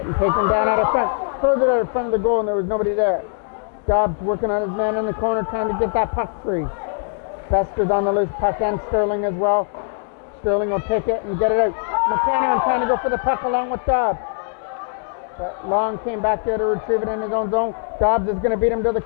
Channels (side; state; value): right; silent; digital silence